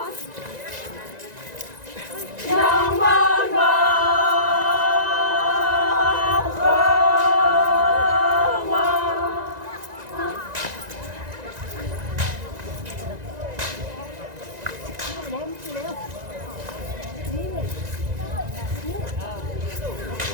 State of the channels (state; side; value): late; left; 1.9 ms